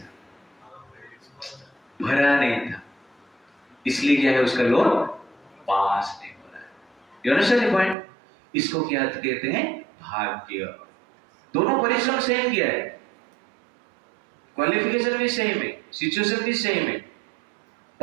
भरा नहीं था, इसलिए क्या है? उसका लोन पास नहीं हो रहा है। You understand the point? इसको क्या कहते हैं? भाग्य। दोनों परिश्रम सेम किया है, क्वालिफिकेशन भी सेम है, सिचुएशन भी सेम है,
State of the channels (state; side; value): drops out; left; at 8.0 s